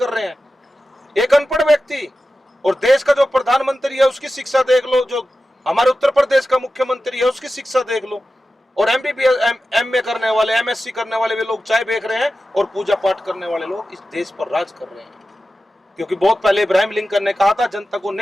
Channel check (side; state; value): both; normal; correlation 0.93